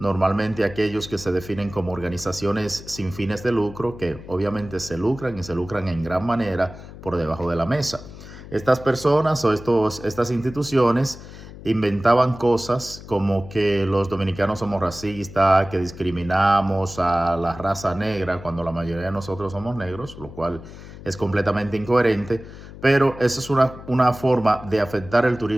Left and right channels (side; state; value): left; noise; hum, 15 dB below the sound